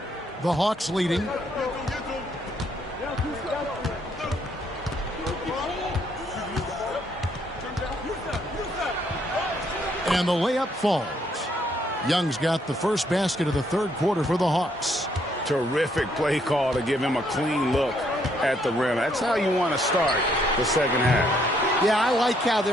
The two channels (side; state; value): both; normal; correlation 0.70